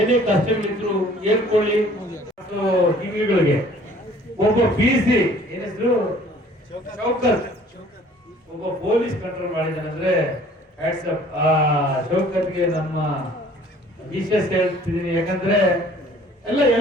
ಕಷ್ಟಗಳಿದ್ರು ಹೇಳ್ಕೊಳ್ಳಿ. ಟಿವಿಗಳಿಗೆ ಒಬ್ಬ PC ಏನ್ ಹೆಸರು ಶೌಕತ್, ಒಬ್ಬ ಪೊಲೀಸ್ ಕಂಟ್ರೋಲ್ ಮಾಡಿದಾನಂದ್ರೆ ವಾಟ್ಸಪ್ ಶೌಕತ್ಗೆ ನಮ್ಮ ವಿಶೇಷ ಹೇಳ್ತಿದ್ದೀನಿ. ಯಾಕಂದ್ರೆ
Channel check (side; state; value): both; normal; correlation 0.53